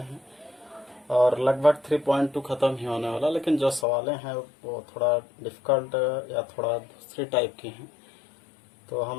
और लगभग 3.2 ख़त्म ही होने वाला, लेकिन जो सवालें हैं वो थोड़ा डिफ़िकल्ट या थोड़ा दूसरी टाइप की हैं, तो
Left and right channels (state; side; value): drops out; right; at 3.9 s